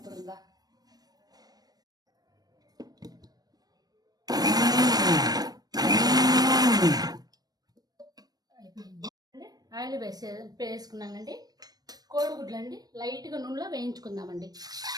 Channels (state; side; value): late; left; 0.19 ms